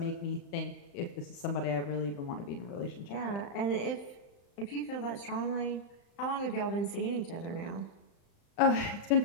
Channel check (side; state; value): right; late; 35 ms